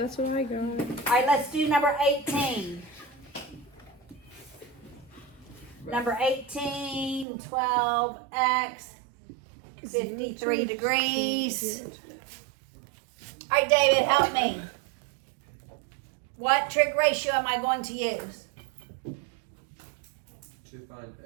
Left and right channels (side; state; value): left; drops out; at 7.2 s